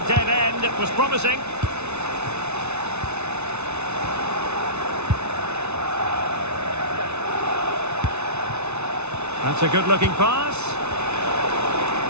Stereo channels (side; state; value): left; late; 0.81 ms